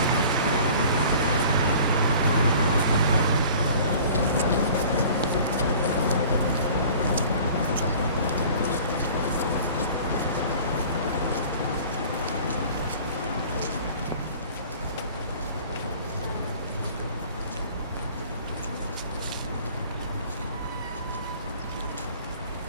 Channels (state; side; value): inverted; both; correlation -0.47